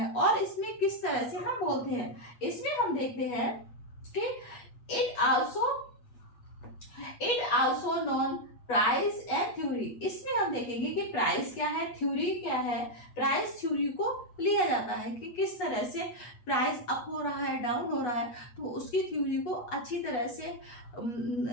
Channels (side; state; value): right; late; 8.3 ms